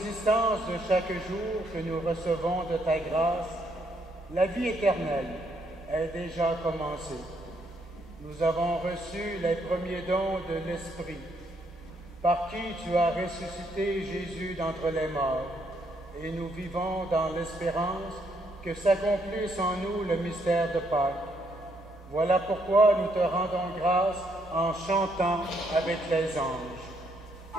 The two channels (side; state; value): both; normal; correlation 0.73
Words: de chaque jour que nous recevons de ta grâce, la vie éternelle est déjà commencée. Nous avons reçu les premiers dons de l'Esprit, par qui tu as ressuscité Jésus d'entre les morts, et nous vivons dans l'espérance que s'accomplisse en nous le mystère de Pâques. Voilà pourquoi nous te rendons grâce en chantant avec les anges.